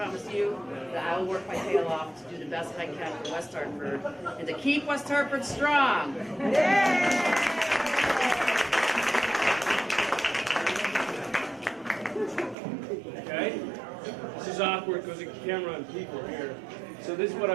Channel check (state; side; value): drops out; left; at 12.6 s